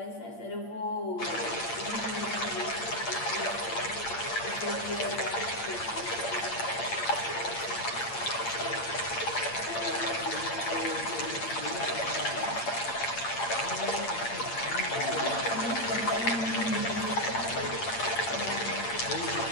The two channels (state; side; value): late; right; 8.7 ms